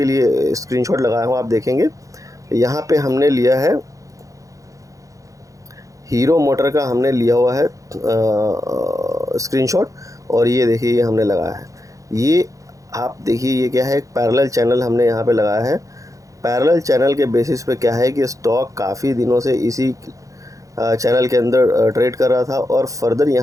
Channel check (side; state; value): left; late; 0.16 ms